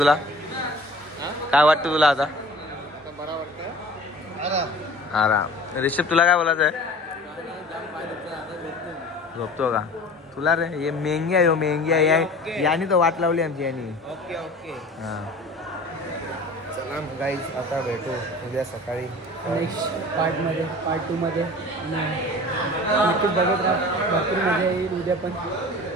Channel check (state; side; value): normal; both; correlation 0.42